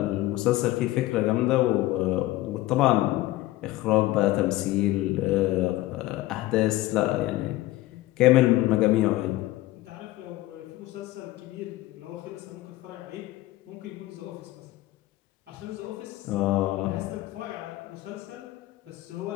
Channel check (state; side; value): quieter; right; 17.1 dB